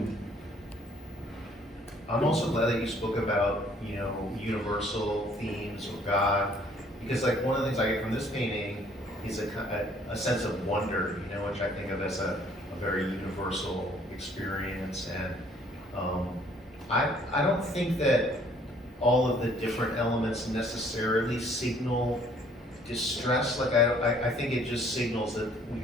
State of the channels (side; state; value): both; normal; correlation 0.60